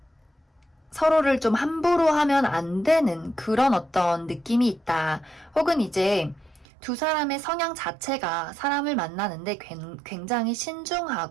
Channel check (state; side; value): drops out; left; at 6.7 s